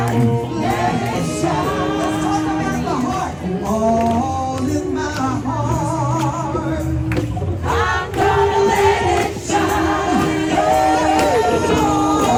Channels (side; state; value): both; identical; correlation 1.00